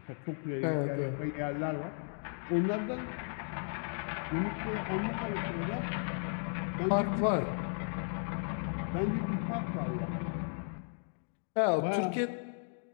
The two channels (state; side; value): silent; right; 54 dB below the other